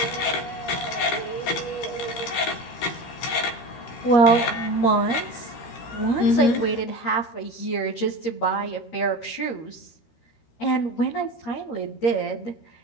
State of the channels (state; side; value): late; right; 13 ms